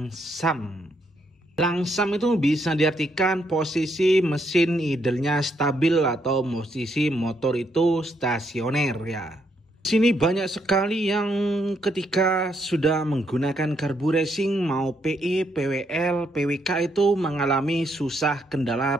Langsam itu bisa diartikan posisi mesin idlenya stabil atau posisi motor itu stasioner ya. Di sini banyak sekali yang ketika sudah menggunakan karbu racing mau PE, PWL, PWK itu mengalami susah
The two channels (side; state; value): both; normal; correlation 0.75